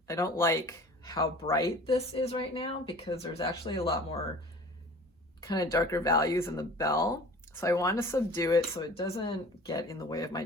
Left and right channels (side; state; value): both; normal; correlation 0.44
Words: don't like how bright this is right now, because there's actually a lot more kind of darker values in the bell. So I want to subdue it so it doesn't get in the way of my